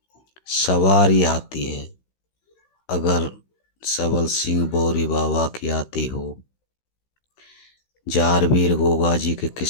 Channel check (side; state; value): right; late; 16 ms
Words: सवारी आती है, अगर सबल सिंह बोरी बाबा की आती हो, जारवीर गोगा जी के